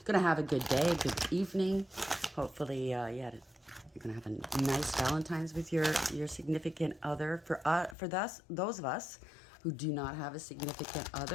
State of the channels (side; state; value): right; drops out; at 8.0 s